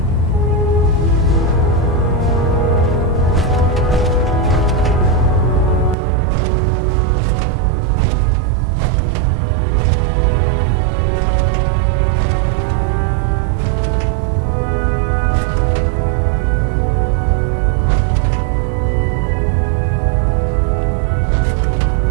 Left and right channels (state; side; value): drops out; left; at 6.0 s